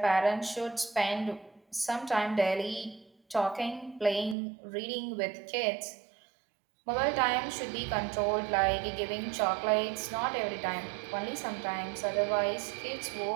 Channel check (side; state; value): left; drops out; at 4.4 s